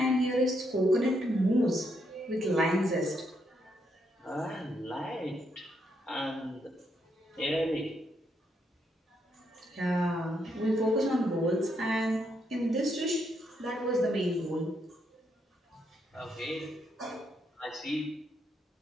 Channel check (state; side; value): normal; both; correlation 0.77